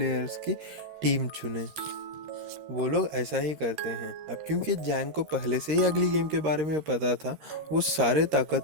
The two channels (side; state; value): left; late; 13 ms